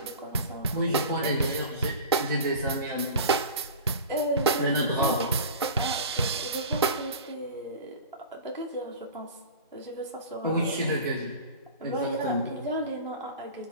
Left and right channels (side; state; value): both; inverted; correlation -0.34